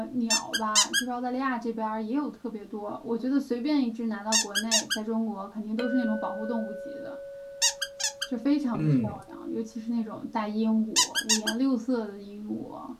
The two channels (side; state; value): both; identical; correlation 1.00